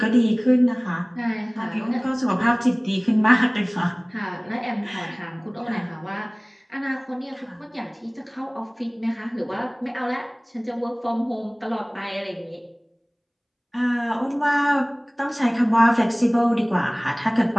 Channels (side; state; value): both; identical; correlation 1.00